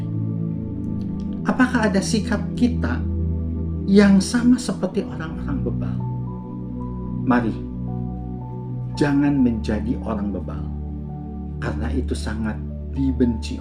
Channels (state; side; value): identical; both; correlation 1.00